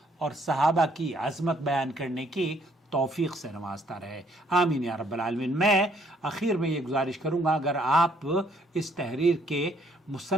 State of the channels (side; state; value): both; normal; correlation 0.65